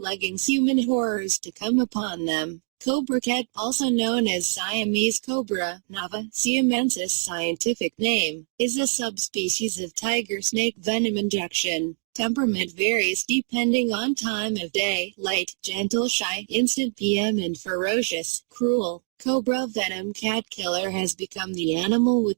human horrors to come upon them. Cobra cat, also known as Siamese cobra, Nava siamensis scientific name, is a subspecies of tiger snake venom injection. Temperament varies depending on time of day, light, gentle, shy, instant PM and ferocious, cruel. Cobra venom cat killer has become the animal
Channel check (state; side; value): silent; left; 62 dB below the other